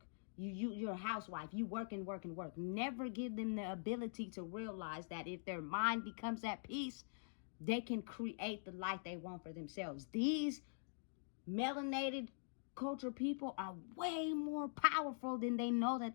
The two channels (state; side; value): silent; right; digital silence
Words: You're a housewife. You work and work and work. Never give them the ability to realize that if their mind becomes at peace, they can create the life they want for themselves. These melanated culture people are way more powerful than they know